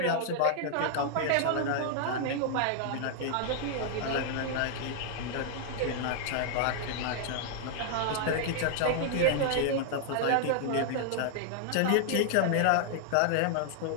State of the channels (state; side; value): different; both; correlation 0.00